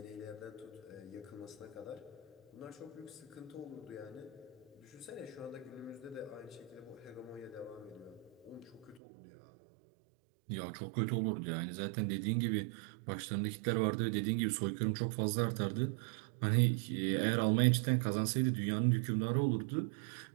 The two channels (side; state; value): left; drops out; at 9.0 s